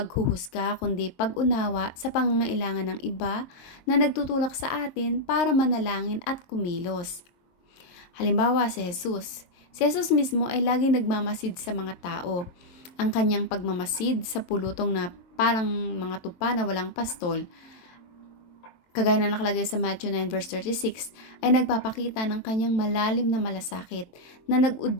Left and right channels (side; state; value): right; late; 23 ms